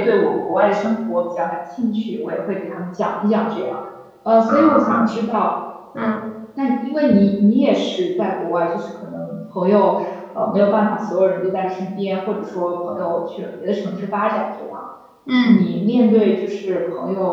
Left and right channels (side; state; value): both; identical; correlation 1.00